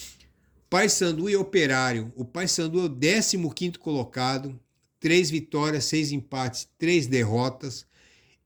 Paysandu e Operário. O Paysandu é o 15º colocado, 3 vitórias, 6 empates, 3 derrotas.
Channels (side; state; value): both; identical; correlation 1.00